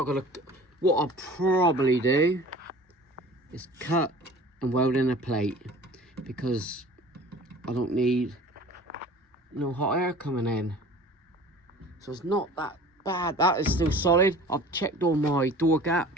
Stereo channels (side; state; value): both; normal; correlation 0.44